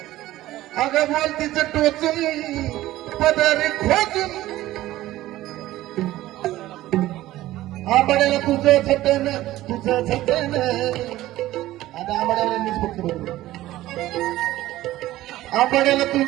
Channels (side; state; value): left; quieter; 15.6 dB